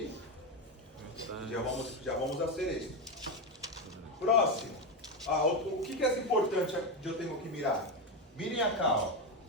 Já vamos fazer isso. Próximo. O que é importante que eu tenho que mirar? Mirem cá, ó.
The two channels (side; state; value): both; normal; correlation 0.11